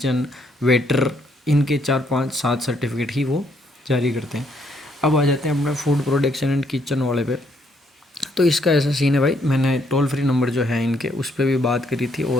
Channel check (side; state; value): both; normal; correlation 0.71